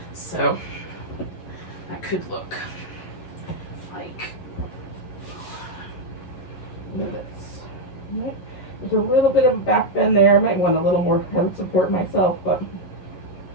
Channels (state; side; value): late; right; 11 ms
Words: So that could look like this. There's a little bit of a back bend there. I might want a little more head support myself, but